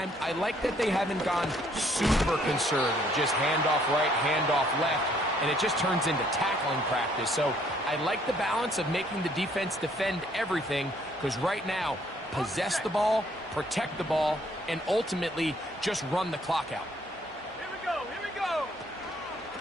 I like that they haven't gone super conservative, just handoff right, handoff left, and it just turns into tackling practice. So I like the balance of making the defense defend everything, because right now, possess the ball, protect the ball, and ultimately just run the clock out. Here we go, here we go.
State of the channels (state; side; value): normal; both; correlation 0.64